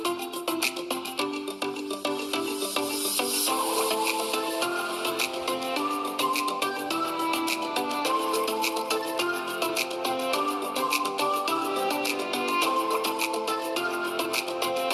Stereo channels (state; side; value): identical; both; correlation 1.00